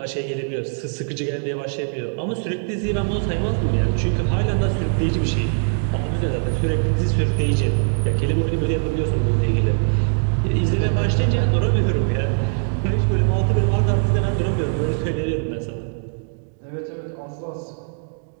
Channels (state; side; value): silent; left; digital silence